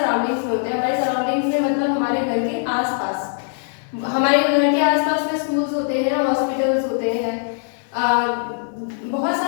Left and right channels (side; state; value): right; silent; 65 dB below the other